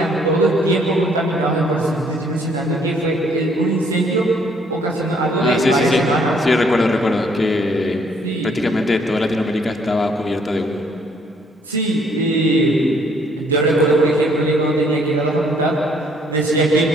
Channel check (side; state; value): both; normal; correlation 0.65